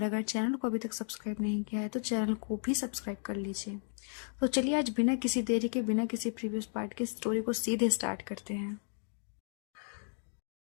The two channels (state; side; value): silent; right; 55 dB below the other